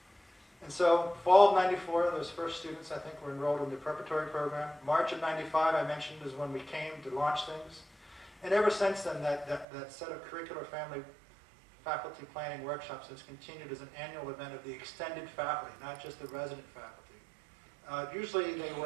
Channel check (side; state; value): left; drops out; at 9.7 s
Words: And so fall of 94, those first students, I think, were enrolled in the preparatory program. March of 95, I mentioned, is when we came to launch things. And ever since then, that set of curricular family faculty planning workshops has continued as an annual event of the extended faculty, not just the resident faculty. Usually they